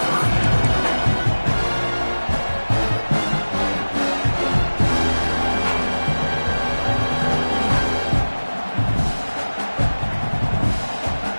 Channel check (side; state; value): both; inverted; correlation -1.00